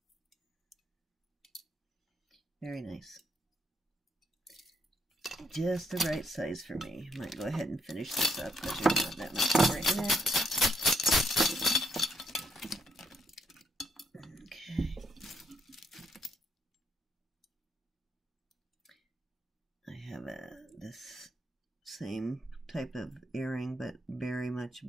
Very nice. Just the right size for me. Might go ahead and finish this up because there's not that much more in it. Okay. I have this same type of earring, but very much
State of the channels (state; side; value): normal; both; correlation 0.75